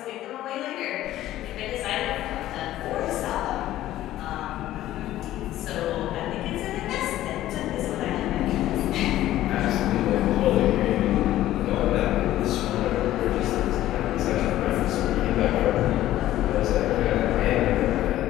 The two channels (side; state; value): right; quieter; 14.1 dB